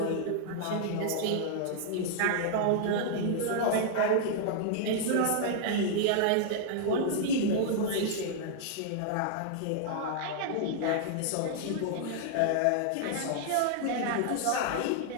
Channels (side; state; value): both; different; correlation -0.01